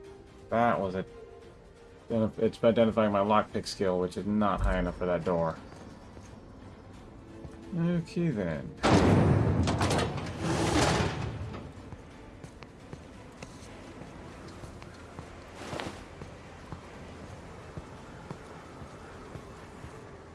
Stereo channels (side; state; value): both; identical; correlation 1.00